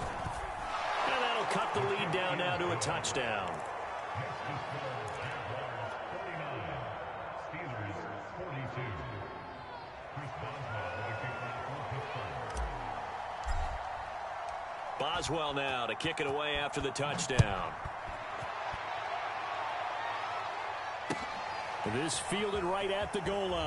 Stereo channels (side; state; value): both; identical; correlation 1.00